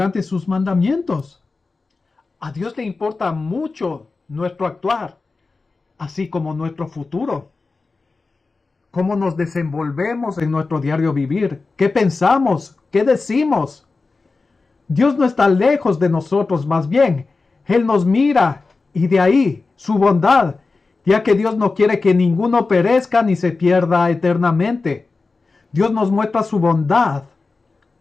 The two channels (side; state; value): right; quieter; 3.9 dB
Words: sus mandamientos. A Dios le importa mucho nuestro actuar, así como nuestro futuro. Cómo nos desenvolvemos en nuestro diario vivir, qué pensamos, qué decimos. Dios no está lejos de nosotros, más bien, Él nos mira, y de ahí su bondad, ya que Dios no quiere que ninguno perezca ni se pierda eternamente. Dios nos muestra su bondad